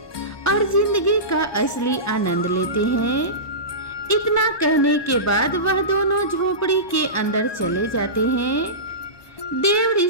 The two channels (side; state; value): right; late; 1.2 ms